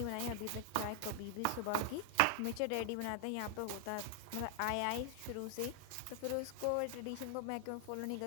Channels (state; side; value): different; both; correlation 0.00